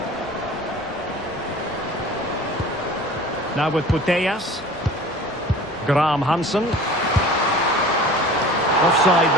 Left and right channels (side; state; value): both; normal; correlation 0.42